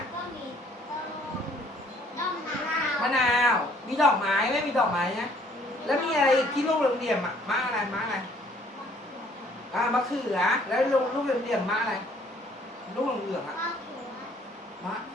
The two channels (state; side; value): normal; both; correlation 0.60